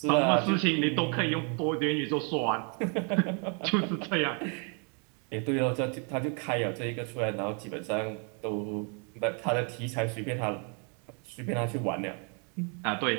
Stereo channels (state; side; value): quieter; left; 37.7 dB